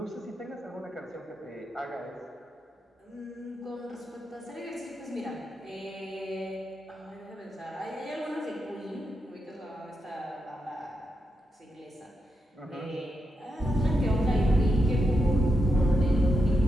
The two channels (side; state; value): both; normal; correlation 0.85